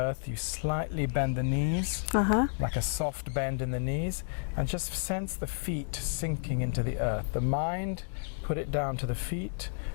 you slightly bend the knees, like a soft bend in the knees, and just sense the feet sinking into the earth. The mind, put it down to the feet,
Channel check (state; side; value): silent; right; digital silence